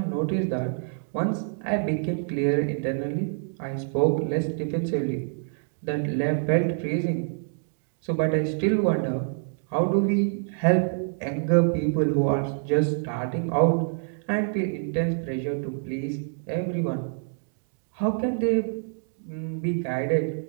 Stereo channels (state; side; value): silent; left; digital silence